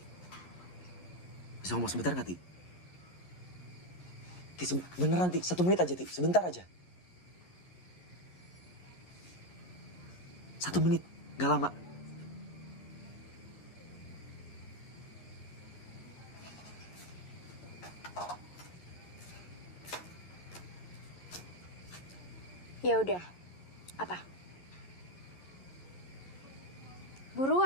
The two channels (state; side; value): late; right; 11 ms